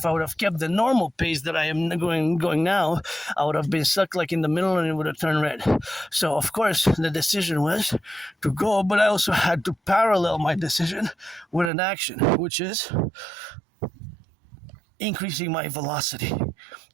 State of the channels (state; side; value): drops out; left; at 11.7 s